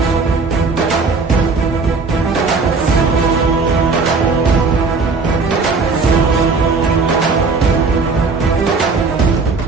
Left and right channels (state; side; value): quieter; left; 4.2 dB